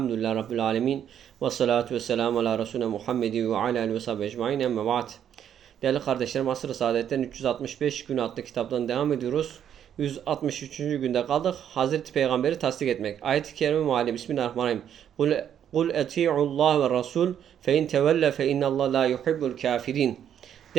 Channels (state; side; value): quieter; left; 9.4 dB